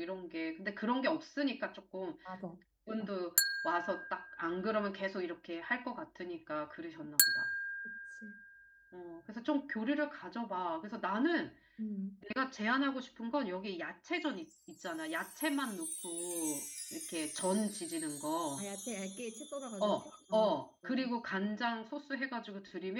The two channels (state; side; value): identical; both; correlation 1.00